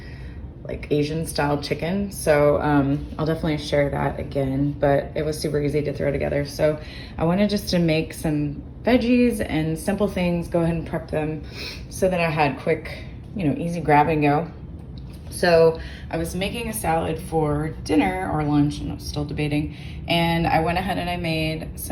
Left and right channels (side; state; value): both; identical; correlation 1.00